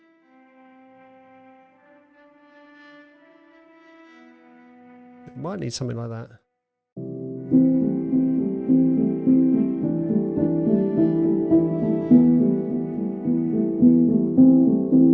It might need something like that.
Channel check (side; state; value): both; identical; correlation 1.00